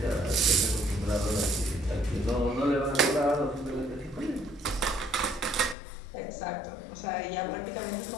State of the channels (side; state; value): right; drops out; at 5.8 s